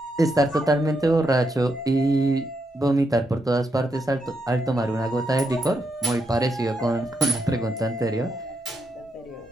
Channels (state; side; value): normal; both; correlation 0.81